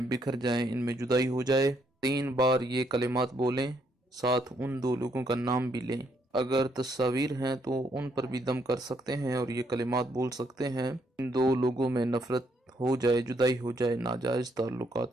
بکھر جائیں، ان میں جدائی ہو جائے۔ 3 بار یہ کلمات بولیں، ساتھ ان دو لوگوں کا نام بھی لیں۔ اگر تصاویر ہیں تو ان پر بھی دم کر سکتے ہیں اور یہ کلمات بول سکتے ہیں۔ ان دو لوگوں میں نفرت ہو جائے، جدائی ہو جائے ناجائز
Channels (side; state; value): both; normal; correlation 0.73